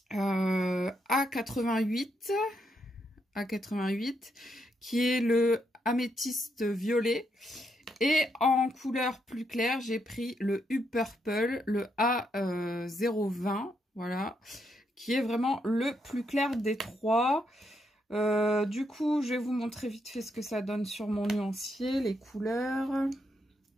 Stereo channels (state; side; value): normal; both; correlation 0.78